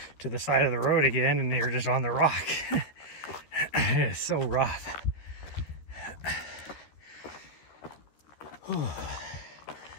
to the side of the road again, and you're just on the rock. It is so rough. Whew.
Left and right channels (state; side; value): late; right; 13 ms